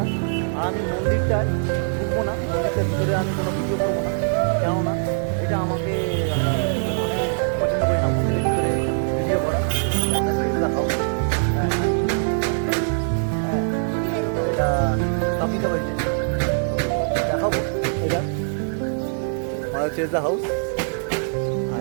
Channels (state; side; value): silent; left; digital silence